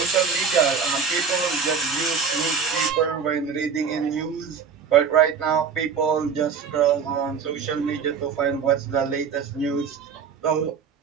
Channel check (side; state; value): left; quieter; 6.2 dB